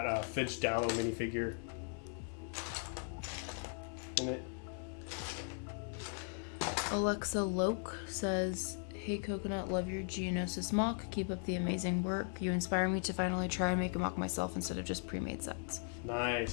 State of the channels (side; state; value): right; silent; 52 dB below the other